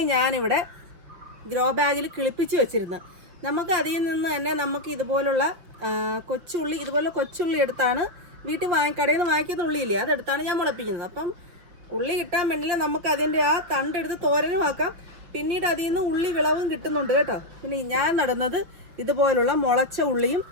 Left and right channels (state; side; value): late; left; 5.9 ms